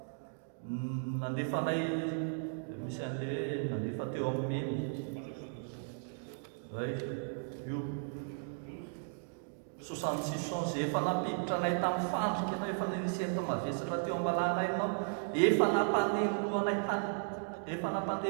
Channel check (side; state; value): left; silent; digital silence